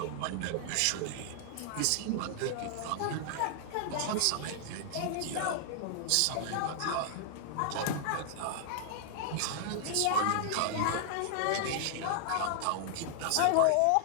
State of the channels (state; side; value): different; both; correlation -0.01